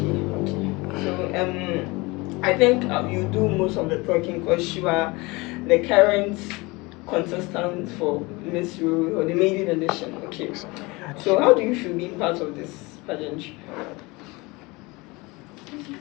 So I think you do most of the talking because you are the current contestant for Miss Rue or the maiden edition. Okay. So how do you feel being part of this pageant?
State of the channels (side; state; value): right; quieter; 24.2 dB